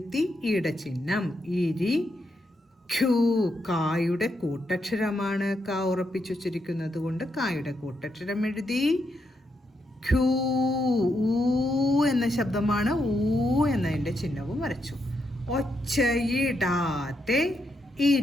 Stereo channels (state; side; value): normal; both; correlation 0.81